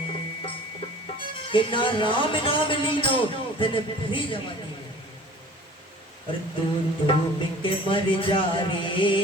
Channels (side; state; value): both; normal; correlation 0.45